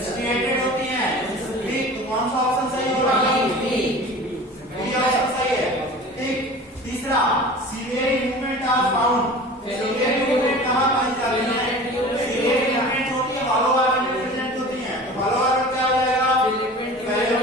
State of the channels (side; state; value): both; normal; correlation 0.39